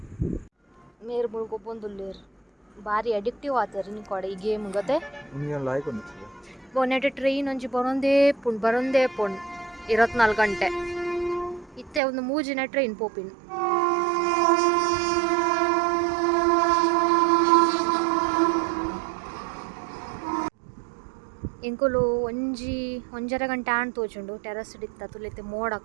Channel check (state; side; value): drops out; left; at 12.0 s